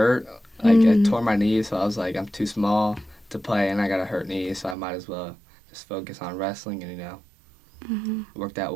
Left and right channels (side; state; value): left; drops out; at 4.8 s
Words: Like I Mm. tore my knee, so I was like, I'm too small to play, and I got a hurt knee, so I might as well just focus on wrestling, and Hmm. it worked out